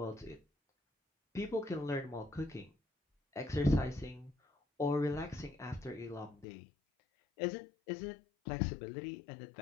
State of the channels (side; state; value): right; drops out; at 6.5 s